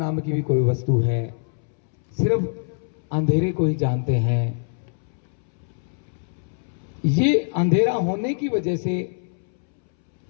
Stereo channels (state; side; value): silent; right; 62 dB below the other